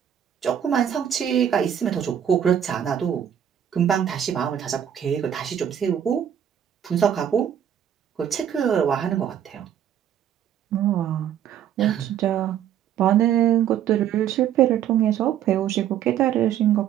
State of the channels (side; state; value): left; quieter; 9.6 dB